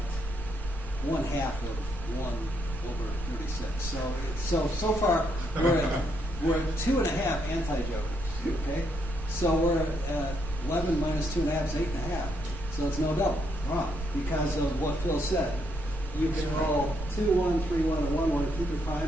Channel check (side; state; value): both; normal; correlation 0.75